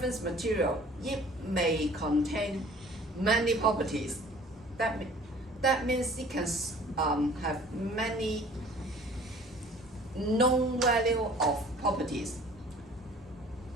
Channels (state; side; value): normal; both; correlation 0.50